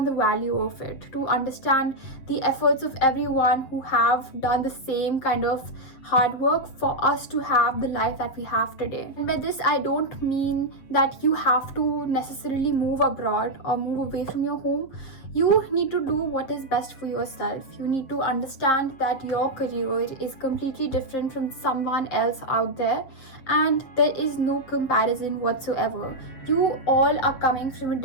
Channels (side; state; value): right; late; 7.7 ms